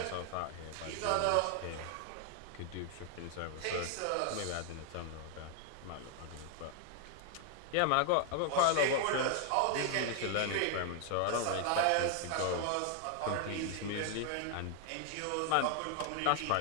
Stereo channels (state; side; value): different; both; correlation 0.00